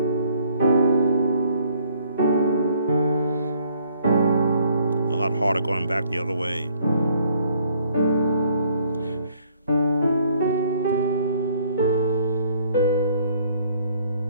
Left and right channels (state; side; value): inverted; both; correlation -0.63